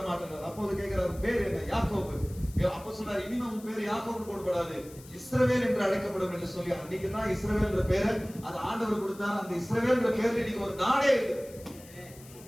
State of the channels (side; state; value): left; noise; hiss, 21 dB below the sound